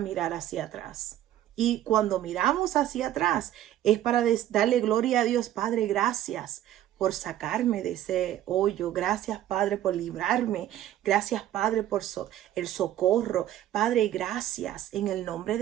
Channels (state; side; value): quieter; left; 12.5 dB